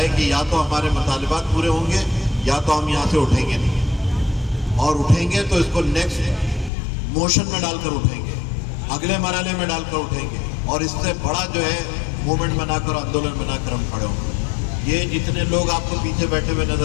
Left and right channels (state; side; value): drops out; right; at 6.7 s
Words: कि या तो हमारे मुतालिबात पूरे होंगे या तो हम यहाँ से उठेंगे नहीं, और उठेंगे तो इसको नेक्स्ट मोशन में डालकर उठेंगे, अगले मरहले में डालकर उठेंगे, और इससे बड़ा जो है मूवमेंट बनाकर, आंदोलन बनाकर हम खड़े होंगे। ये जितने लोग आपको पीछे बैठे हुए